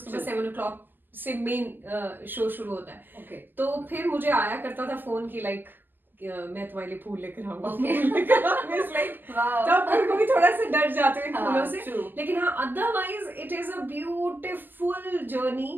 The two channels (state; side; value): late; left; 0.094 ms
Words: बाद 7 o'clock से मेन शो शुरू होता है। तो फिर मुझे आया करता था फोन की, लाइक मैं तुम्हारे लिए फूल लेकर आऊंगा, तब मेरे को भी थोड़ा सा डर जाते हैं फूलों से, लेकिन हाँ otherwise it is a beautiful